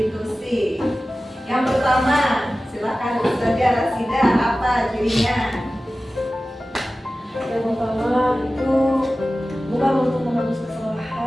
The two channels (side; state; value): both; normal; correlation 0.96